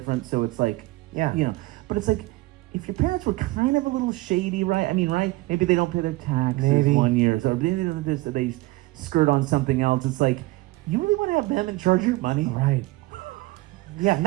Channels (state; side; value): quieter; left; 20.1 dB